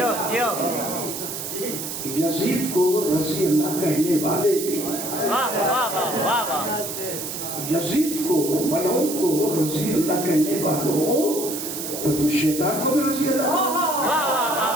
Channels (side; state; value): right; noise; hiss, 6 dB below the sound